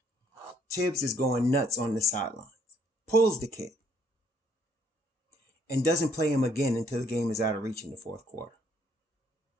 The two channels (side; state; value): both; normal; correlation 0.66